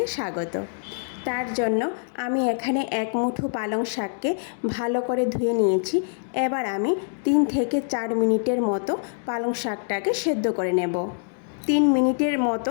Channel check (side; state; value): right; silent; digital silence